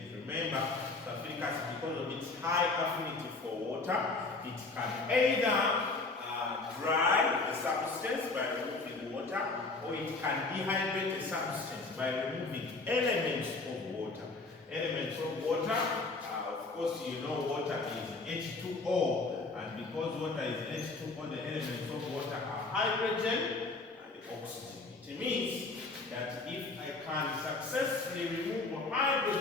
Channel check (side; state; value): right; quieter; 3.6 dB